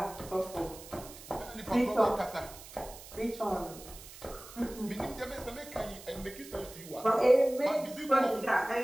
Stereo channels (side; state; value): right; noise; hiss, 16 dB below the sound